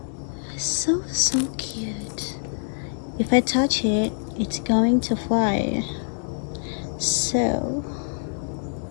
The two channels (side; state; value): right; silent; digital silence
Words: So cute. If I touch it, it's going to fly. So